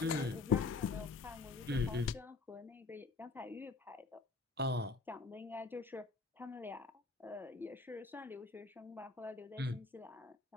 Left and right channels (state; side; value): quieter; right; 4.0 dB